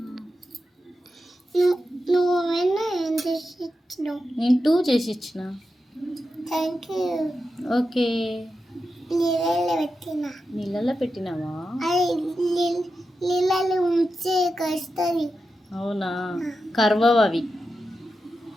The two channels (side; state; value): both; normal; correlation 0.89